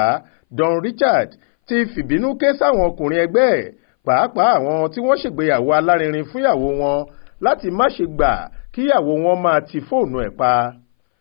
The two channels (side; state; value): right; silent; 62 dB below the other